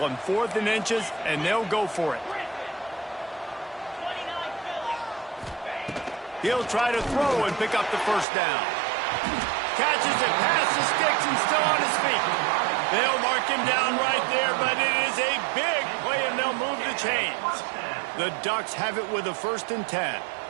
4th and inches, and they'll go for it. He'll try to throw and pick up the first down. Catches it past the sticks and still on his feet. They'll mark him down right there, but it is a big play, and they'll move the chains. The Ducks have it with a 1st and 10.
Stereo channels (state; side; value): drops out; left; at 8.2 s